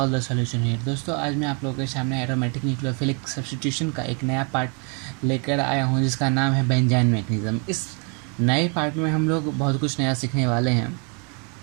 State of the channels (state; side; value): quieter; left; 36.3 dB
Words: the solution here. दोस्तों आज मैं आप लोगों के सामने एरोमेटिक न्यूक्लियोफिलिक सब्स्टिट्यूशन का एक नया पार्ट लेकर आया हूँ जिसका नाम है बेंजाइन मैकेनिज्म। इस नए पार्ट में हम लोग बहुत कुछ नया सीखने वाले